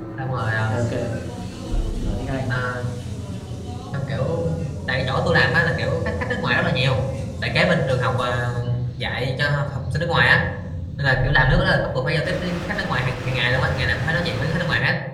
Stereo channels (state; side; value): identical; both; correlation 1.00